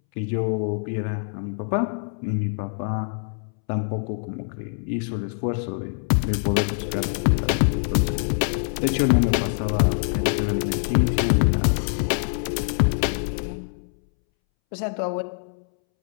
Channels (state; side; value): silent; right; 62 dB below the other